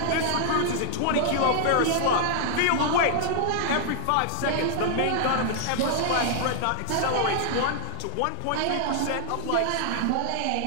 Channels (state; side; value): different; both; correlation -0.01